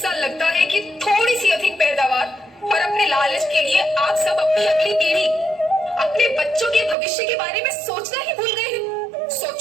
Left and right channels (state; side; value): drops out; left; at 7.0 s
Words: लगता है कि थोड़ी सी अधिक पैदावार और अपने लालच के लिए आप सब अपनी अगली पीढ़ी, अपने बच्चों के भविष्य के बारे में सोचना ही भूल गए हैं।